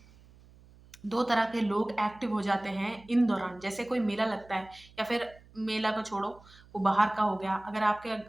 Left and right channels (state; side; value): noise; right; hum, 25 dB below the sound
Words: 2 तरह के लोग एक्टिव हो जाते हैं इन दौरान। जैसे कोई मेला लगता है या फिर मेला को छोड़ो, वो बाहर का हो गया। अगर आपके